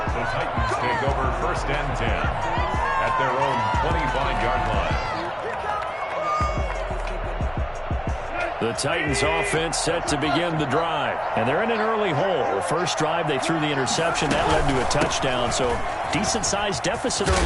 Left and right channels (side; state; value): both; identical; correlation 1.00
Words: Titans take over 1st and 10 at their own 25-yard line. The Titans offense set to begin the drive. And they're in an early hole. First drive, they threw the interception. That led to a touchdown. So decent-sized deficit